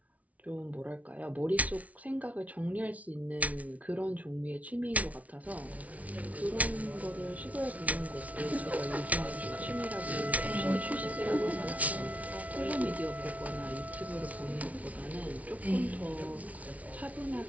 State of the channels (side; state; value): left; late; 0.069 ms